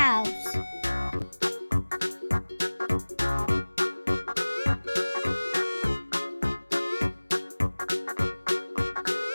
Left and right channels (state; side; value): inverted; both; correlation -1.00